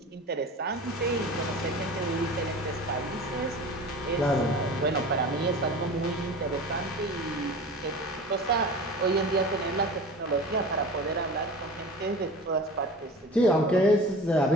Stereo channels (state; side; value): normal; both; correlation 0.36